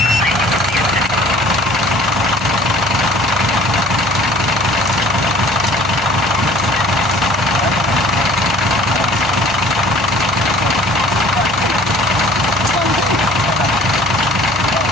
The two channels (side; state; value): both; normal; correlation 0.50